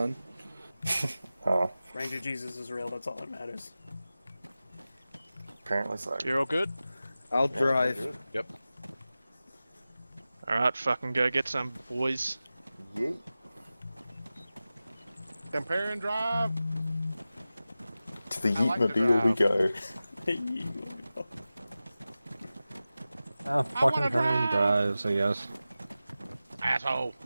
Oh, Ranger Jesus is real, that's all that matters. apparently so. You're all good? I'll drive. Yep. Alright, fucking go get some, boys. Yeet. Compare and drive. To the I like to Yeetmobile we go. Fucking Herman drives, I guess. Asshole.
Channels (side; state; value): both; inverted; correlation -0.95